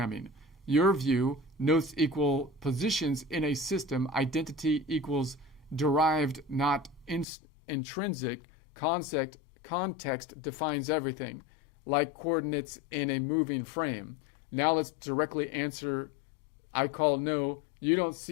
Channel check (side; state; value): right; drops out; at 7.2 s